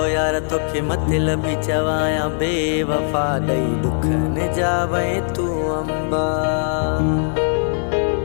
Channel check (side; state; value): right; silent; 56 dB below the other